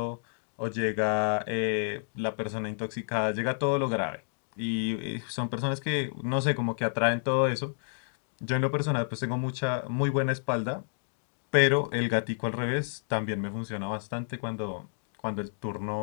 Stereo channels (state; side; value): silent; right; digital silence